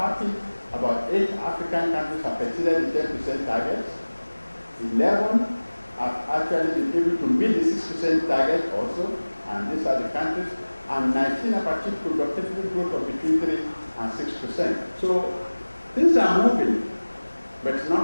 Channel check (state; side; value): inverted; both; correlation -1.00